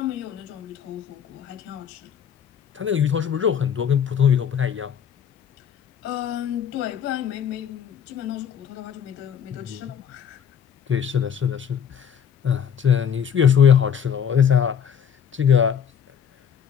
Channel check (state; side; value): quieter; right; 8.1 dB